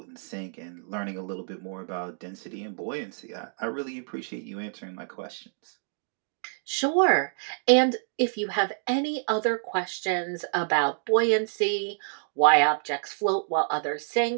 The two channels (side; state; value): left; silent; digital silence